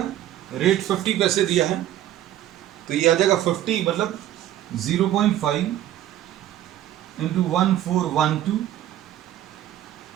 रेट 50 पैसे दिया है, तो ये आ जाएगा 50 मतलब 0.5 इंटू 1412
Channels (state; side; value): quieter; left; 12.5 dB